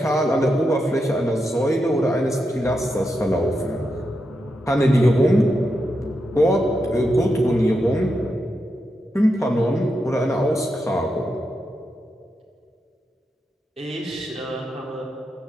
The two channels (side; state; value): both; normal; correlation 0.86